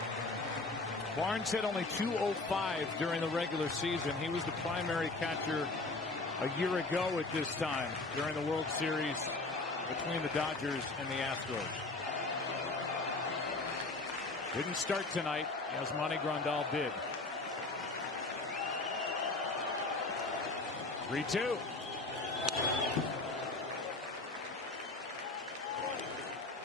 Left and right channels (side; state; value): right; quieter; 3.3 dB